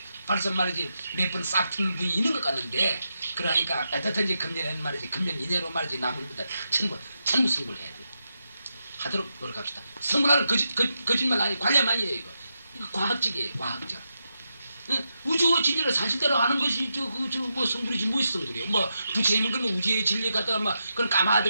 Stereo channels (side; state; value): both; inverted; correlation -0.87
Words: 벌써 말이지 몇 번 싹 트는 분이 있는 것 같는데 그러니까 어떻든지 금년에는 말이지 금년 이내로 말이지 남은 분들 전부 승부를 해야 돼. 하도록 노력합시다. 승부라는 거짓말 아니 관련 아니에요. 이거 과학적이에요. 과학적. 우주의 진리를 사실대로 아는 것이 뭐 성불이지 무엇이 성불이에요. 뭐 부처님은 그러면 우주의 진리 갖다가 막 그런